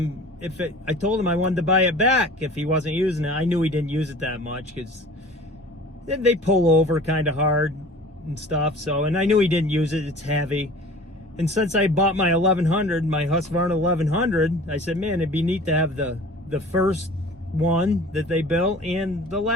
I told him I wanted to buy it back if he wasn't using it. I knew he didn't use it that much because they pull over kind of hard and stuff. So, and I knew he didn't use it. It's heavy. And since I bought my 1100, my Husqvarna 1100, I said, man, it'd be neat to have the first one that they built and the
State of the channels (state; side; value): normal; both; correlation 0.44